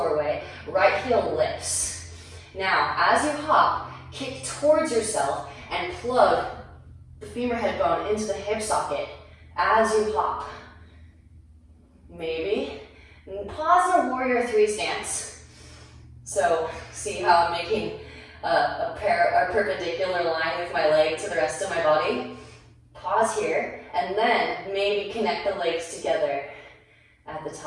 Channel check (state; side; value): identical; both; correlation 1.00